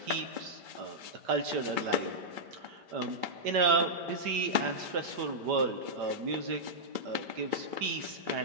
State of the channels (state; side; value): late; left; 5.1 ms